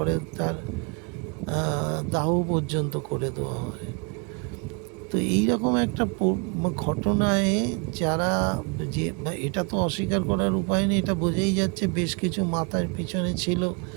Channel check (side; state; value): left; quieter; 33.7 dB